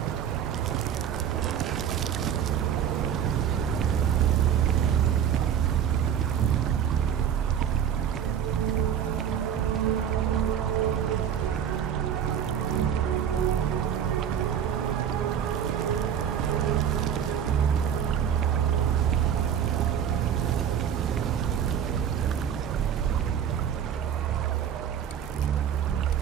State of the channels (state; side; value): quieter; left; 8.9 dB